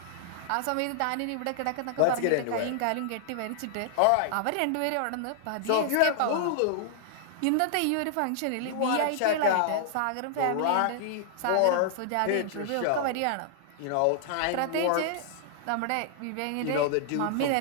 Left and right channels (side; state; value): both; different; correlation -0.01